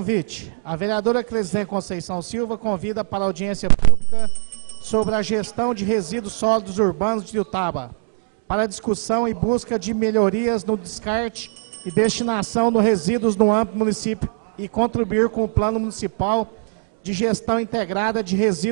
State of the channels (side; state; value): left; silent; digital silence